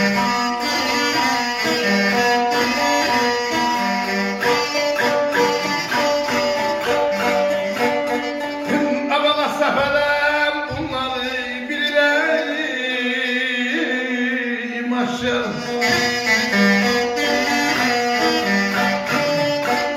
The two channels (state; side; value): identical; both; correlation 1.00